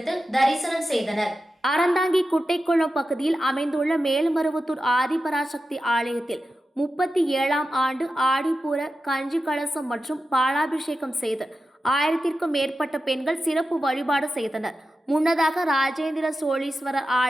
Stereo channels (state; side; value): normal; both; correlation 0.91